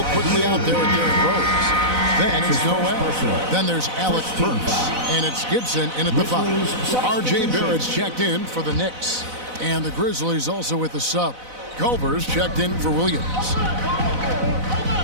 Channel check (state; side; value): late; left; 4.0 ms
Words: quickly out there with Derrick Rose. Then it's Noel. Then there's Alec Burks. And it's Gibson in at the 5. R.J. Barrett's checked in for the Knicks. And the Grizzlies also with the sub. Culver's checked in for Williams.